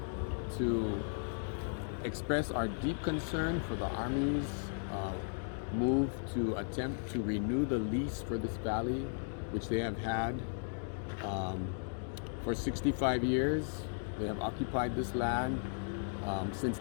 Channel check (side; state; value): right; silent; digital silence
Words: to express our deep concern for the Army's move to attempt to renew the lease for this valley, which they have had for 65 years. They have occupied this land since